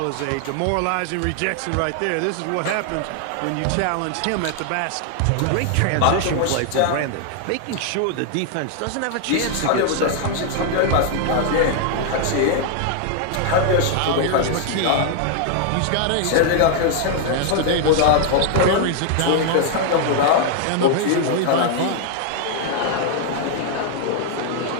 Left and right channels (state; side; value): different; both; correlation 0.00